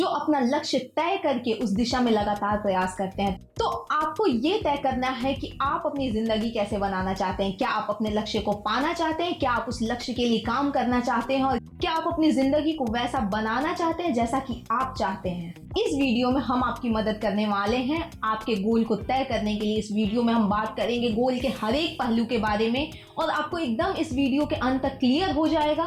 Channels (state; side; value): identical; both; correlation 1.00